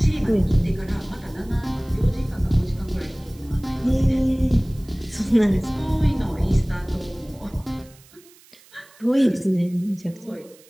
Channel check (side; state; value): right; noise; hiss, 26 dB below the sound